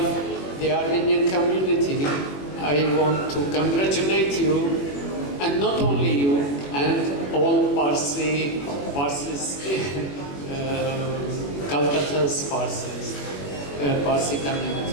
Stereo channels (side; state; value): right; late; 21 ms